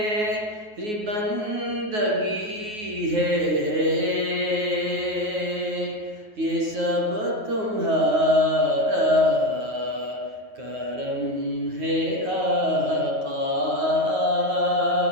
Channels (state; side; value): late; left; 9.4 ms